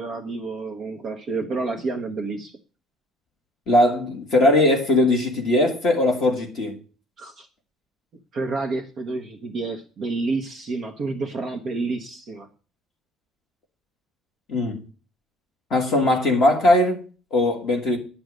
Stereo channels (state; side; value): normal; both; correlation 0.54